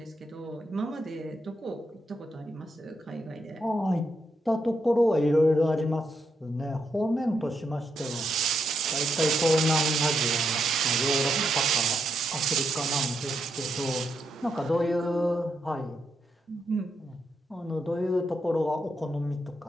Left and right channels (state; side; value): normal; both; correlation 0.81